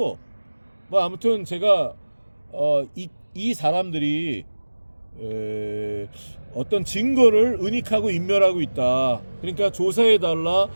아무튼 제가 이 사람들이 어떤 증거를 은닉하고 인멸하고 있다. 그러니까 조사해달라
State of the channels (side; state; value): both; inverted; correlation -1.00